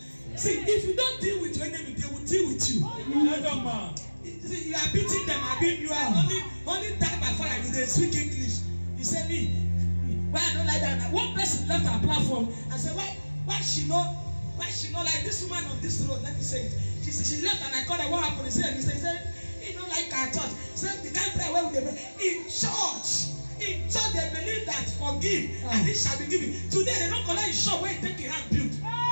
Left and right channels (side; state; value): both; inverted; correlation -1.00